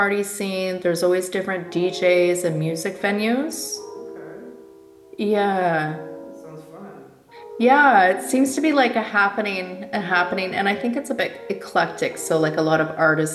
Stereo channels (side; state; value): both; identical; correlation 1.00